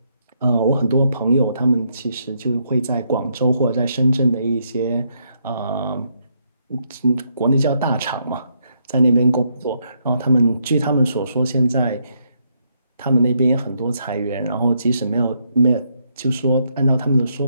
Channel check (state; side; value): inverted; both; correlation -0.76